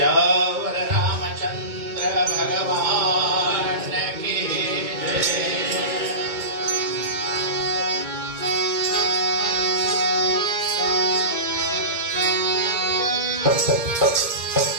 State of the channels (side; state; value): left; late; 2.2 ms